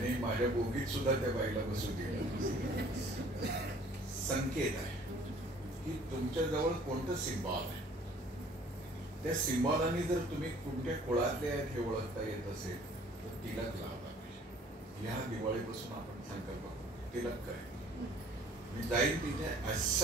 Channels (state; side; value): normal; both; correlation 0.54